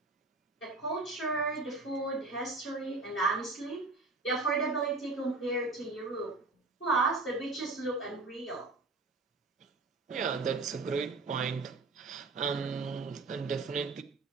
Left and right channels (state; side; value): quieter; left; 3.6 dB